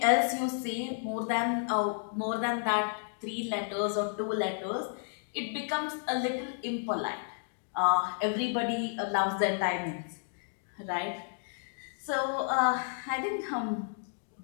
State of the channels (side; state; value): right; silent; digital silence